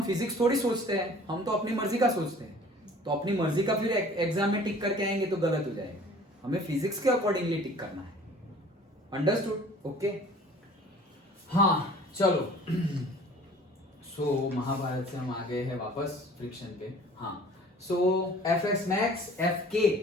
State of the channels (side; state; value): both; normal; correlation 0.49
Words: फिजिक्स थोड़ी सोचते हैं, हम तो अपनी मर्जी का सोचते हैं, तो अपनी मर्जी का फिर एग्जाम में टिक करके आएंगे तो गलत हो जाएगा, हमें फिजिक्स के अकॉर्डिंगली टिक करना है। अंडरस्टूड? ओके, हाँ चलो। सो महाभारत से हम आ गए हैं वापस फ्रिक्शन पे। हाँ, so Fx max